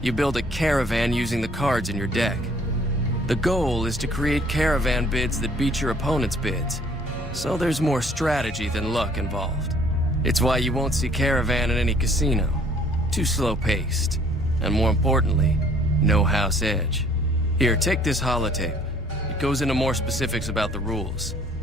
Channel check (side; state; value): both; normal; correlation 0.58